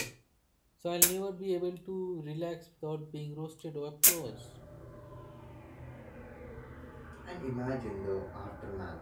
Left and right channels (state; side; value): identical; both; correlation 1.00